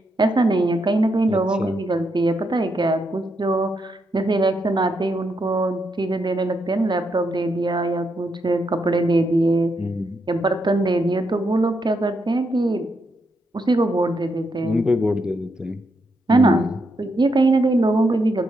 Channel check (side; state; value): both; normal; correlation 0.80